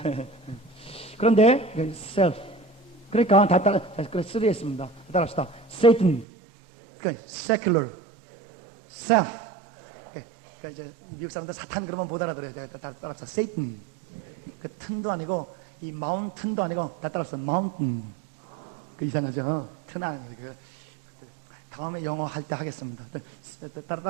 그런데 self 그러니까 다 따라 쓰리했습니다. 따라합시다. Satan, 그러니까 secular, self. 그러니까 이제 미국 사람들 사탄 그러면 못 알아들어요. 다 따라합시다. Satan. 그 튼도 아니고 이 mountain도 아니고 다 따라합시다. mountain. 그 이상하죠. 튼 아니고 다음에 영어 할 때 하겠습니다.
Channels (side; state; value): left; drops out; at 6.2 s